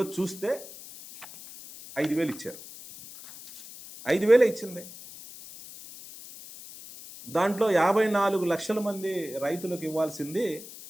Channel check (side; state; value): left; noise; hiss, 15 dB below the sound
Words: చూస్తే 5,000 ఇచ్చారు. 5,000 ఇచ్చింది. దాంట్లో 54 లక్షల మంది రైతులకు ఇవ్వాల్సింది